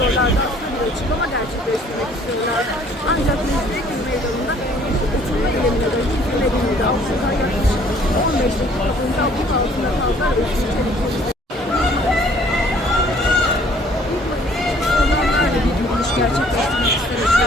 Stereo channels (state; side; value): normal; both; correlation 0.58